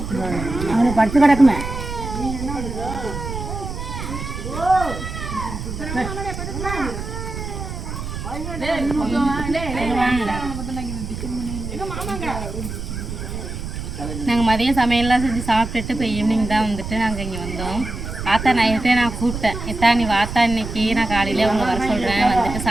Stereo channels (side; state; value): right; noise; rumble, 7 dB below the sound